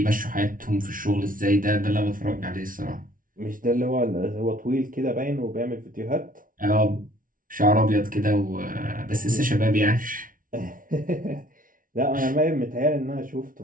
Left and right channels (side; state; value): left; late; 0.39 ms